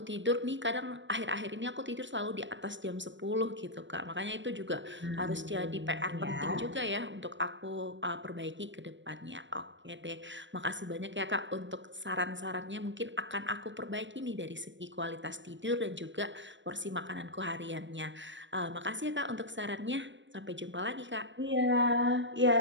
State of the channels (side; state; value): left; late; 0.54 ms